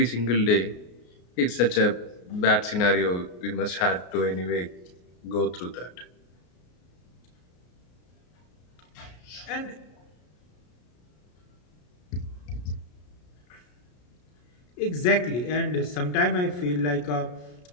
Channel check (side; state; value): right; late; 33 ms